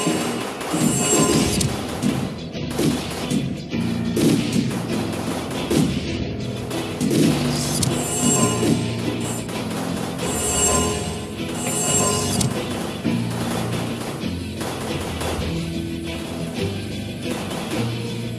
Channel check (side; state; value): both; identical; correlation 1.00